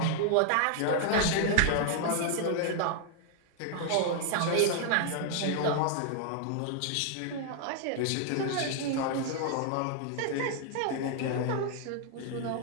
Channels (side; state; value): both; different; correlation 0.00